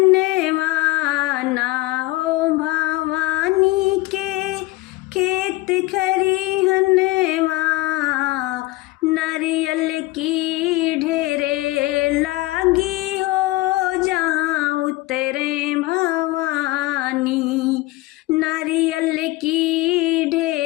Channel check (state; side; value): quieter; right; 19.8 dB